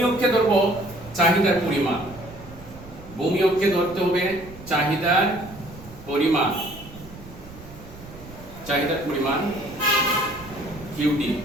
অক্ষে ধরব চাহিদার পরিমাণ। ভূমি অক্ষে ধরতে হবে চাহিদার পরিমাণ, চাহিদার পরিমাণ কিউটি।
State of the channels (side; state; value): right; noise; rumble, 17 dB below the sound